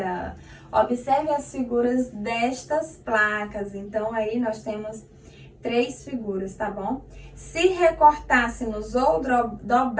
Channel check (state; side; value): identical; both; correlation 1.00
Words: Observe as figuras destas placas. Então, aí nós temos 3 figuras, tá bom? Se recortássemos ou